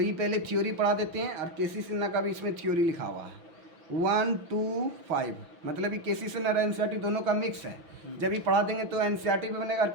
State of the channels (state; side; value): late; left; 6.0 ms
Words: ये पहले थ्योरी पढ़ा देते हैं, और केसी सिन्हा का भी इसमें थ्योरी लिखा हुआ है 1 2 5, मतलब ये केसी सिन्हा और NCERT दोनों का मिक्स है। जब ये पढ़ा देंगे तो NCERT भी बनेगा और